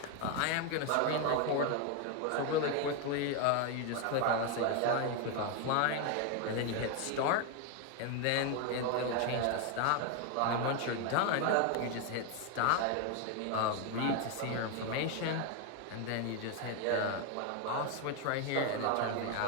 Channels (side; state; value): both; different; correlation 0.01